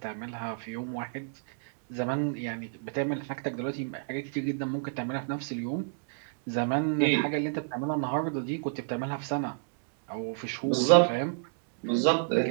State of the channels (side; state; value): left; silent; digital silence